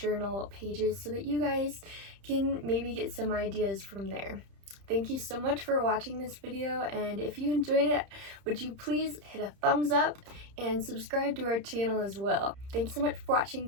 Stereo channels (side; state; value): left; late; 30 ms